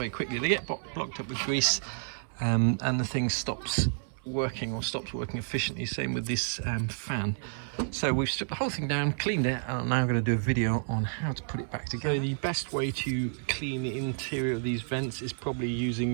quickly, they get blocked up with grease, and the thing stops working efficiently. Same with this fan. So we've stripped the whole thing down, cleaned it, and I'm now going to do a video on how to put it back together. So the best way to clean the interior of these vents is probably using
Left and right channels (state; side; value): silent; left; digital silence